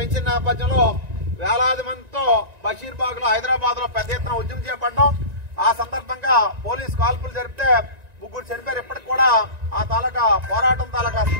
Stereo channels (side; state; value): left; late; 1.9 ms